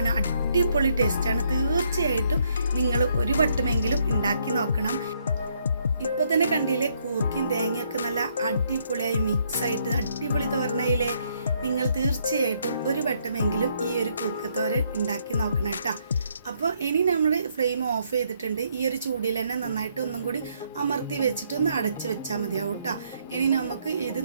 അടിപൊളി ടേസ്റ്റാണ്. തീർച്ചയായിട്ടും നിങ്ങൾ ഒരു വട്ടമെങ്കിലും ഉണ്ടാക്കി നോക്കണം. ഇപ്പോൾ തന്നെ കണ്ടില്ലേ, കൂർക്കയും തേങ്ങയൊക്കെ നല്ല അടിപൊളിയായി മിക്സായിട്ട് അടിപൊളി തോരനായില്ലേ. നിങ്ങൾ തീർച്ചയായിട്ടും ഒരു വട്ടമെങ്കിലും ഈ ഒരു കൂർക്കത്തോരൻ ഉണ്ടാക്കി നോക്കണം കേട്ടോ. അപ്പോൾ ഇനി നമ്മൾ ഫ്ലെയിം ഓഫ് ചെയ്തിട്ടുണ്ട്. ഈ ഒരു ചൂടിൽ തന്നെ നന്നായിട്ട് ഒന്നും കൂടി അമർത്തി വെച്ചിട്ട് ഒന്ന് അടച്ച് വെച്ചാൽ മതിയാവും കേട്ടോ. ഇനി നമുക്ക് ഇത്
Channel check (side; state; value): both; inverted; correlation -0.71